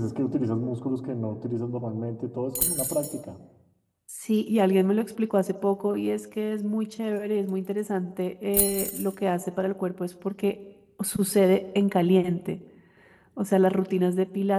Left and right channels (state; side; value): identical; both; correlation 1.00